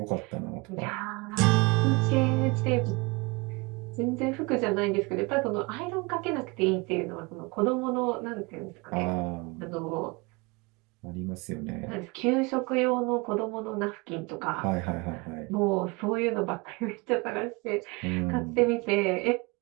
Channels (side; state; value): left; quieter; 26.8 dB